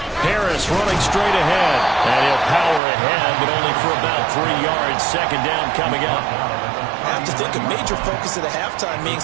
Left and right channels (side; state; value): left; drops out; at 2.8 s